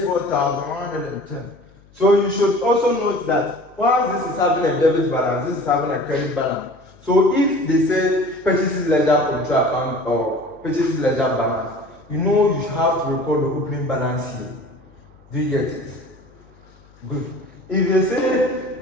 So you should also note that while this is having a debit balance, this is having a credit balance. So if they say purchases ledger control account or purchases ledger balance, you know you have to record the opening balance here. Do you get it? Good. If they say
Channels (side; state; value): left; noise; hum, 28 dB below the sound